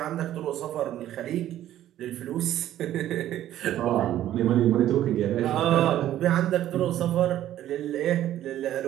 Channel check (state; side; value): quieter; left; 12.6 dB